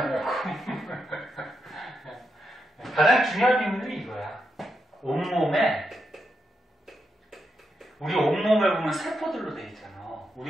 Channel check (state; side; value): normal; both; correlation 0.84